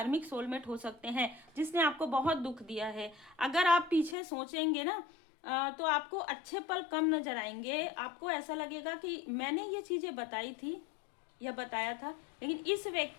सोलमेट हो सकते हैं जिसने आपको बहुत दुख दिया है। अगर आप पीछे सोचेंगे ना तो आपको अच्छे पल कम नजर आएंगे, आपको ऐसा लगेगा कि मैंने ये चीज़ें बताई थी या बताया था, लेकिन इस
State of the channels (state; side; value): drops out; right; at 4.2 s